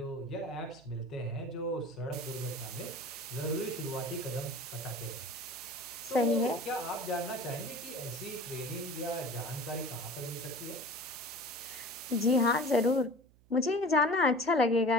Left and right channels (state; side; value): noise; right; hum, 28 dB below the sound